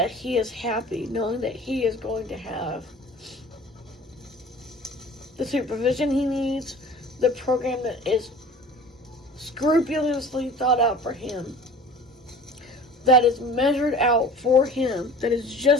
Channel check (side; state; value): both; normal; correlation 0.43